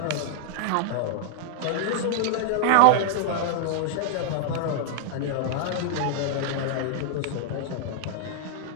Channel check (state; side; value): different; both; correlation -0.01